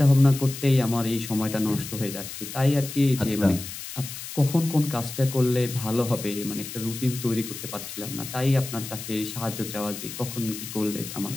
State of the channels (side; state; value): left; noise; hiss, 10 dB below the sound